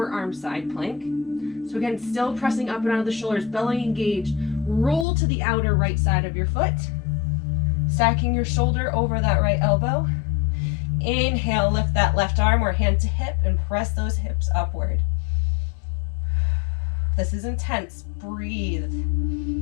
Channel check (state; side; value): drops out; right; at 5.1 s